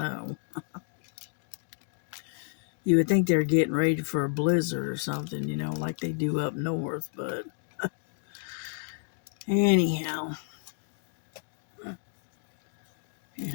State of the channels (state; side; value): silent; right; digital silence